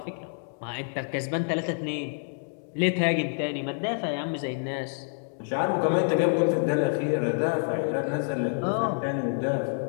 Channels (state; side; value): silent; right; digital silence